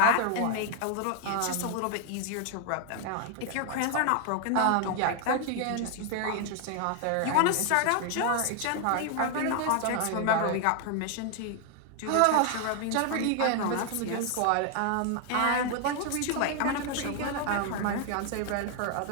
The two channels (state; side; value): different; both; correlation 0.00